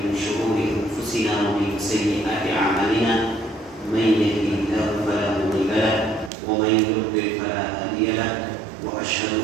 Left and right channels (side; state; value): left; drops out; at 6.3 s